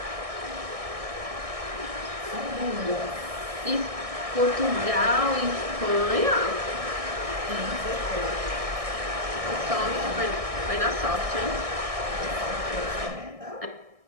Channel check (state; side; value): late; left; 1.6 ms